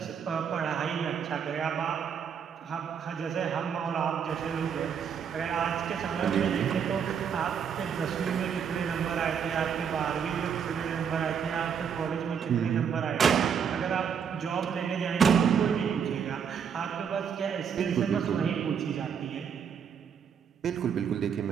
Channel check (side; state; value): left; quieter; 7.3 dB